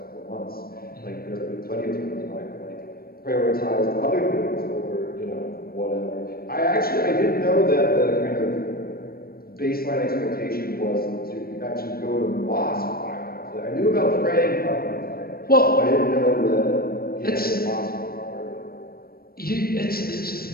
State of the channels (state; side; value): late; right; 0.44 ms